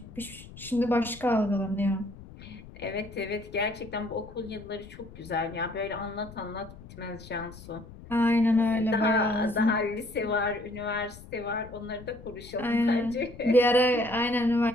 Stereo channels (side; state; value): left; noise; rumble, 17 dB below the sound